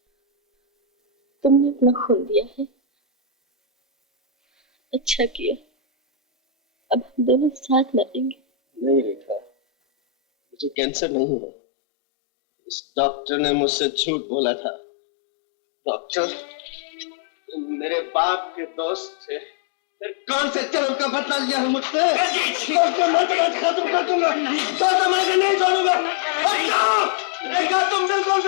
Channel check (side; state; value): right; drops out; at 10.8 s